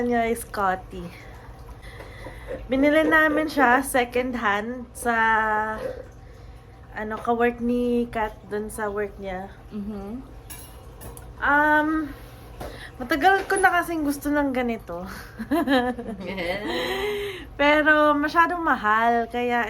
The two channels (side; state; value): both; identical; correlation 1.00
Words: niya ay Scotty. Binili namin siya second hand sa ka-work ni Kat dun sa work niya. Matagal ko na kasing gusto ng ganito. Pero masyadong mahal,